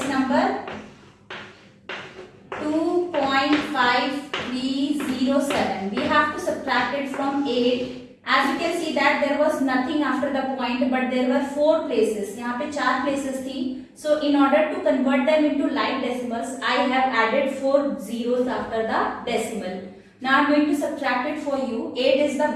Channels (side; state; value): both; identical; correlation 1.00